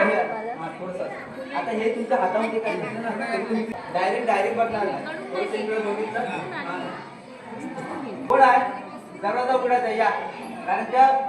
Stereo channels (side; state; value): both; identical; correlation 1.00